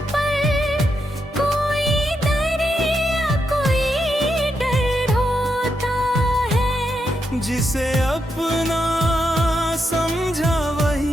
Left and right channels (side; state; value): both; normal; correlation 0.83